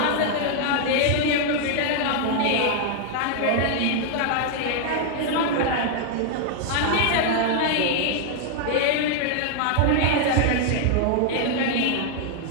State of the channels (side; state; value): both; different; correlation 0.00